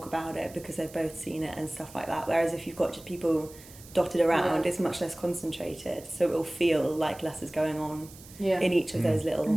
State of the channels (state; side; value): noise; right; hiss, 20 dB below the sound